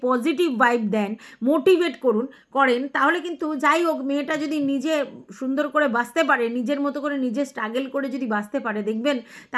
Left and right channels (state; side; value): identical; both; correlation 1.00